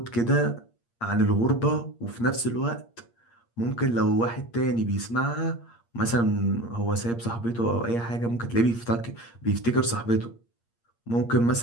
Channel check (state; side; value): late; right; 8.6 ms